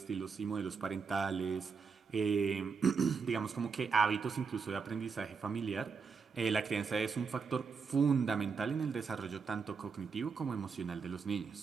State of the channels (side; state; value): left; quieter; 5.4 dB